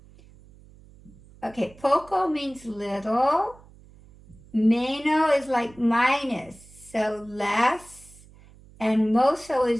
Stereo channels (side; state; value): right; noise; hum, 24 dB below the sound